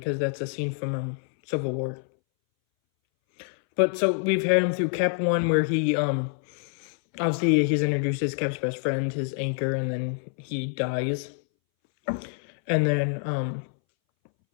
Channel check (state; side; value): silent; right; 61 dB below the other